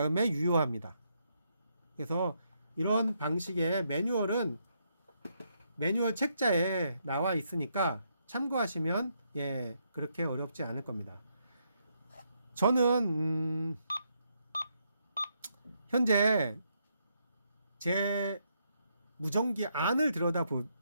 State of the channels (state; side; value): inverted; both; correlation -0.77